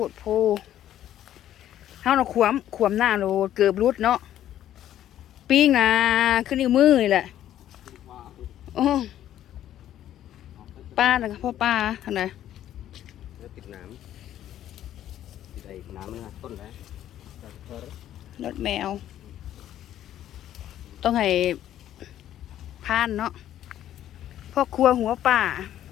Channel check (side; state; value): right; quieter; 11.8 dB